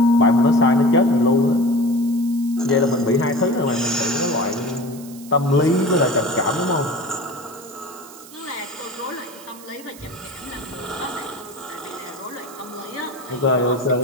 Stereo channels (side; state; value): right; noise; hiss, 19 dB below the sound